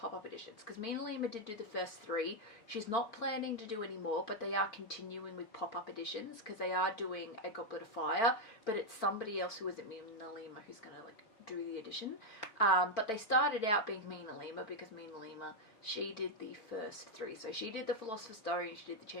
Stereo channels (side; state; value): right; late; 4.5 ms